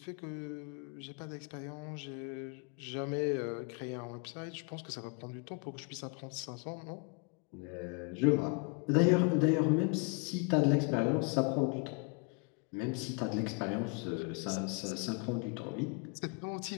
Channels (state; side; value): quieter; right; 34.5 dB